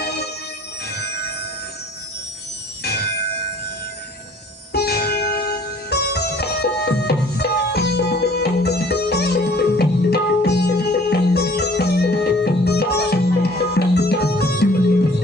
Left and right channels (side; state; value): both; normal; correlation 0.54